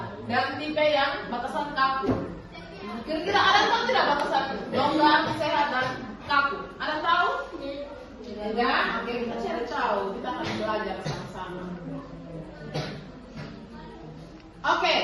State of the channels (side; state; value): both; identical; correlation 1.00